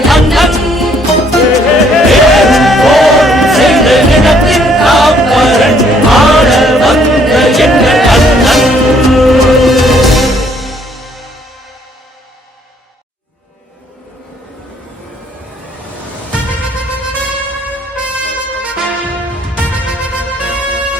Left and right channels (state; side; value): normal; both; correlation 0.65